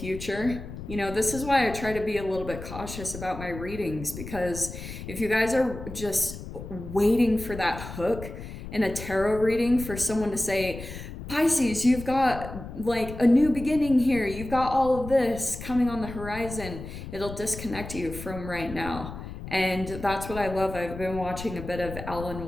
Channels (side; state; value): left; noise; rumble, 10 dB below the sound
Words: this is why I try to be a little bit cautious about my readings, because if you guys are just waiting for that hook in a tarot reading for someone to say, Pisces, you've got like a new beginning here, you've got all of this coming on the horizon, it'll disconnect you from right now. And that's what I love. I've been watching a bit of Alan